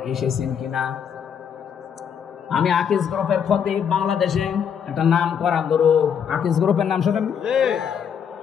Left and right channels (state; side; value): quieter; right; 7.7 dB